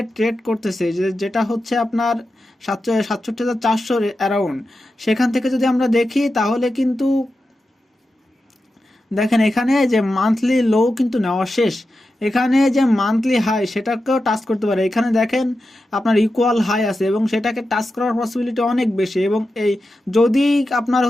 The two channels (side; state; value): both; normal; correlation 0.91